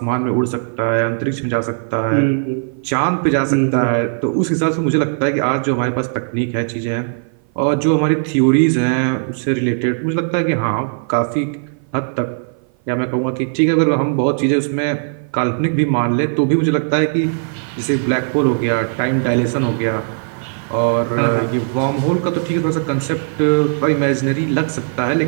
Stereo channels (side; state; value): left; silent; 56 dB below the other